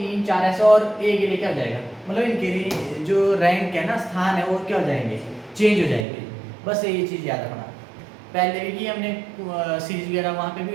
4 ऐसे, और ए के लिए क्या हो जाएगा, मतलब इनके जो रैंक है ना, स्थान है, वो क्या हो जाएंगे? चेंज हो जाएंगे। बस ये चीज़ याद रखना। पहले भी की हमने सीरीज वगैरह, वहाँ पे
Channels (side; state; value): left; drops out; at 6.1 s